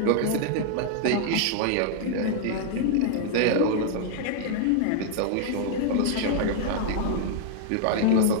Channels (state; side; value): different; both; correlation -0.01